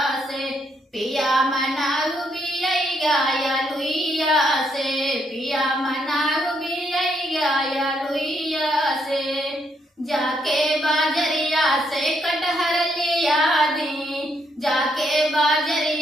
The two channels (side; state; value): both; normal; correlation 0.75